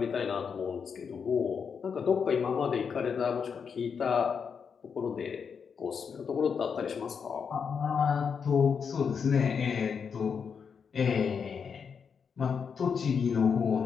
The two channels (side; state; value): right; quieter; 6.4 dB